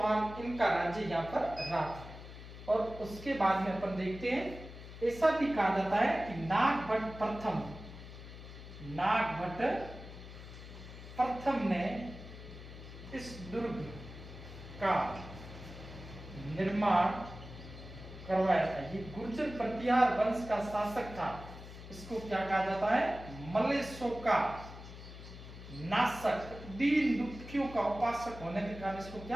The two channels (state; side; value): noise; left; hum, 14 dB below the sound